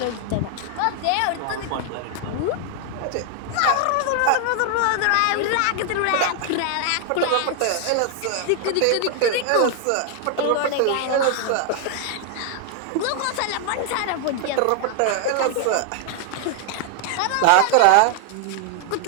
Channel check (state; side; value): different; both; correlation 0.00